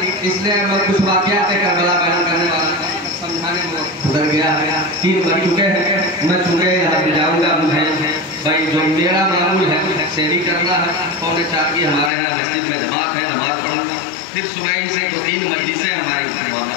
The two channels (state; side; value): drops out; right; at 12.1 s